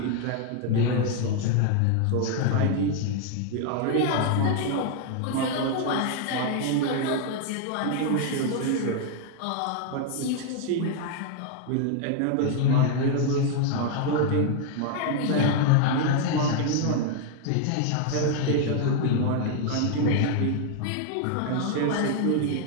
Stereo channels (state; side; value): different; both; correlation 0.00